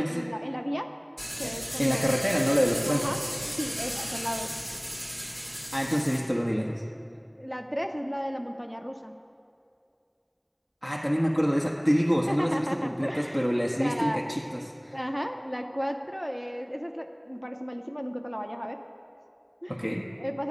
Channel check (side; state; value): both; identical; correlation 1.00